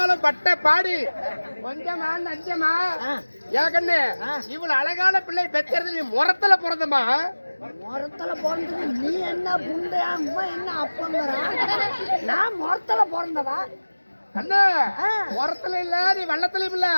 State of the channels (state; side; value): inverted; both; correlation -1.00